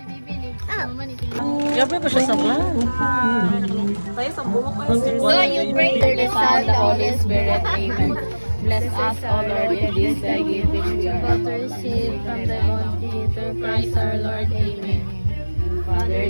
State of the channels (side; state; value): both; inverted; correlation -1.00